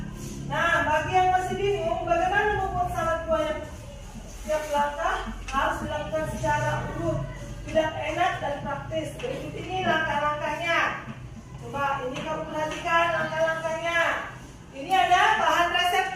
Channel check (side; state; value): both; identical; correlation 1.00